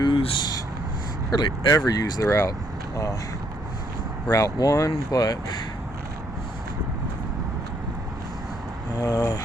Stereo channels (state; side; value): normal; both; correlation 0.70